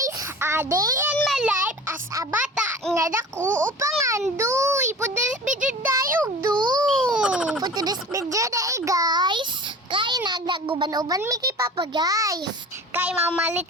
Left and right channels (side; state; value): both; normal; correlation 0.39